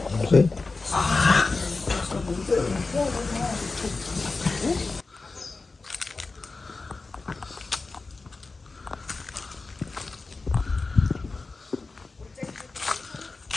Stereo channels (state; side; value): quieter; right; 3.8 dB